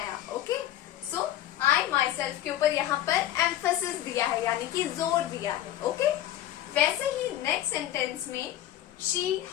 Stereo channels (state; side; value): quieter; right; 12.8 dB